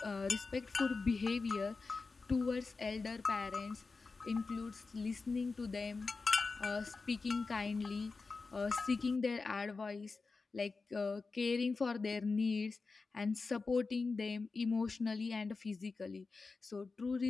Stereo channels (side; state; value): right; quieter; 4.1 dB